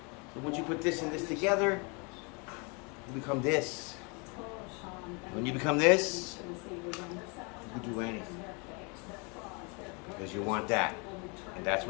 So once you put this and this together, you become this. When you become this, you can do anything. Because you want that. And that's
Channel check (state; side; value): quieter; right; 32.1 dB